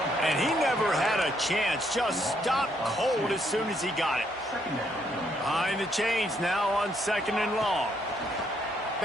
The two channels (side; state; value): both; normal; correlation 0.72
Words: And he never had a chance, just stopped cold as soon as he got it. Behind the chains now on 2nd and long.